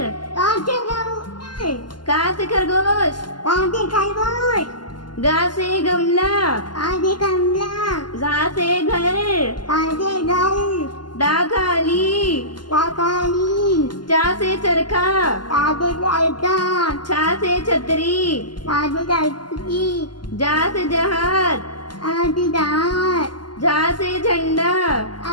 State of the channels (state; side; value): late; right; 0.71 ms